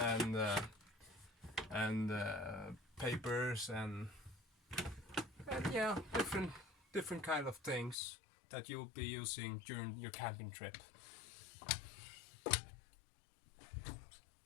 papers and yeah, different kind of things that you'll be using during your camping trip.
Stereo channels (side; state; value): right; drops out; at 8.0 s